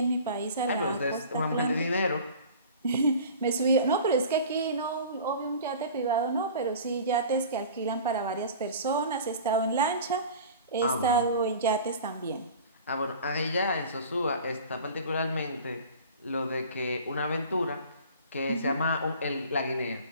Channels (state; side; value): inverted; both; correlation -0.41